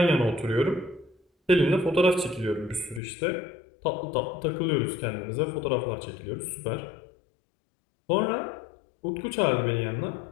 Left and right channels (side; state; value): right; drops out; at 3.0 s